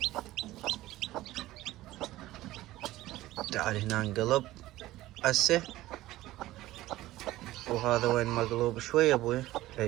تعال هنا انقلب هسه. وهذا وين مقلوب شوي ابوي.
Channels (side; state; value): left; quieter; 16.4 dB